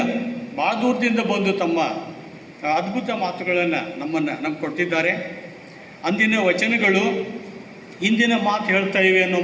ಭಾಳ ದೂರದಿಂದ ಬಂದು ತಮ್ಮ ಅದ್ಭುತ ಮಾತುಗಳನ್ನು ನಮ್ಗೆ ಕೊಟ್ಟಿದ್ದಾರೆ. ಅಂದಿನ ವಚನಗಳು ಇಂದಿನ ಮಾತು ಹೇಳ್ತಾ ಇವೆ ಅನ್ನೋ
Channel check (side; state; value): both; identical; correlation 1.00